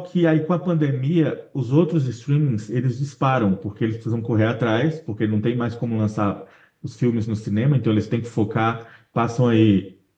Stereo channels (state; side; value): identical; both; correlation 1.00